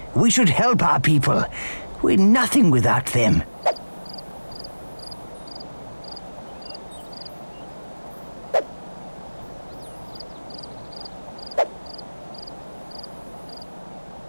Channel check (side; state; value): both; inverted; correlation -1.00